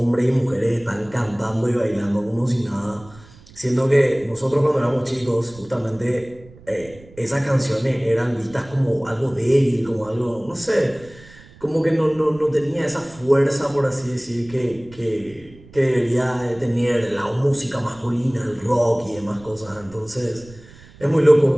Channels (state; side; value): noise; right; rumble, 22 dB below the sound